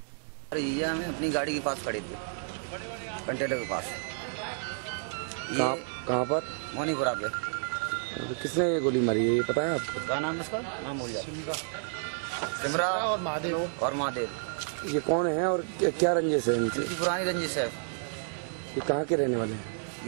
है। ये हमें अपनी गाड़ी के पास खड़े थे, कंटेनर के पास। कहाँ पर? मोनीपुरा पे। किसने ये गोली मारी है ये पता है आपको? क्या नाम है इसका? नाम भूल गया। सिमरा और महादेव। ये कौन है और क्या रंजिश है इनकी? पुरानी रंजिश है। ये कहाँ के रहने वाले हैं?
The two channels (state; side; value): silent; left; digital silence